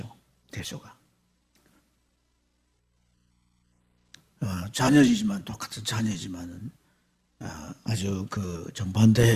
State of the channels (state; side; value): identical; both; correlation 1.00